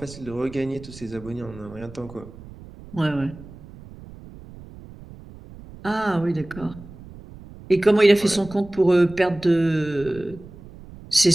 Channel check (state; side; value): noise; right; rumble, 18 dB below the sound